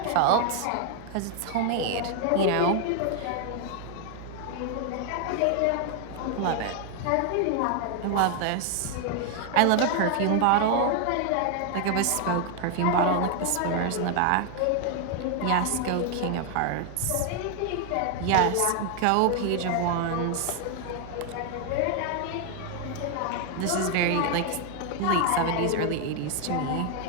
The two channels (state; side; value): different; both; correlation 0.00